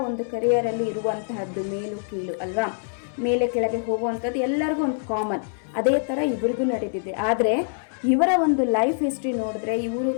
ಒಂದು ಕರಿಯರಲ್ಲಿ ಇರುವಂತಹದ್ದು ಮೇಲು ಕೀಳು ಅಲ್ವಾ, ಮೇಲೆ ಕೆಳಗೆ ಹೋಗುವಂಥದ್ದು ಎಲ್ಲರಿಗೂ ಒಂದು ಕಾಮನ್. ಅದೇ ಥರ ಇವ್ರಿಗೂ ನಡೆದಿದೆ. ಆದರೆ ಇವರ ಒಂದು ಲೈಫ್ ಹಿಸ್ಟ್ರಿ ನೋಡಿದ್ರೆ ಇವರು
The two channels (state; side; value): silent; right; 62 dB below the other